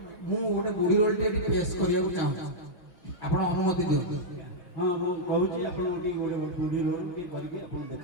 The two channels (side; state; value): right; late; 5.9 ms